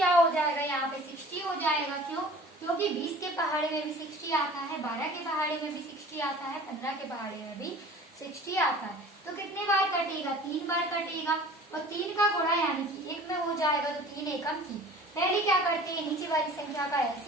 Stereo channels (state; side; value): normal; both; correlation 0.45